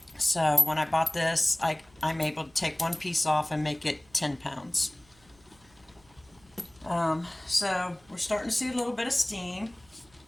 So when I bought this, I'm able to take one piece off and make it 10 pounds. So we're starting to see a little bit of steam.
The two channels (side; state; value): right; noise; hum, 30 dB below the sound